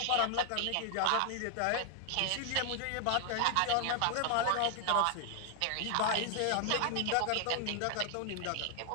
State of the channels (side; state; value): both; different; correlation 0.00